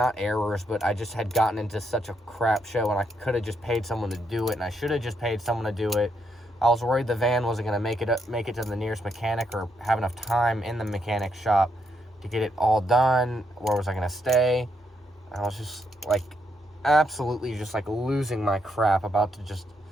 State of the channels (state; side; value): normal; both; correlation 0.77